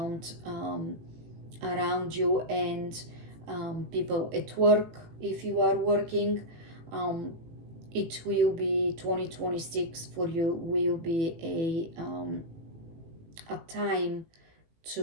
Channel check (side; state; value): left; late; 18 ms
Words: you, and people at work if you are working. It will be 2026 for you, will be a time